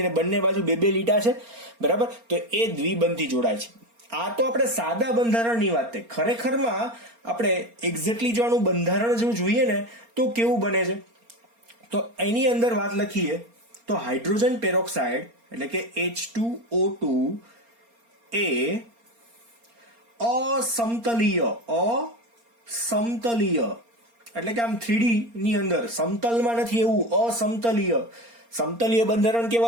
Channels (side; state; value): left; late; 4.3 ms